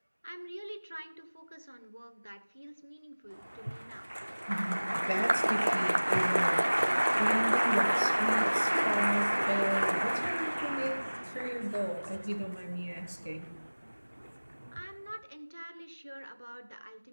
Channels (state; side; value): inverted; both; correlation -1.00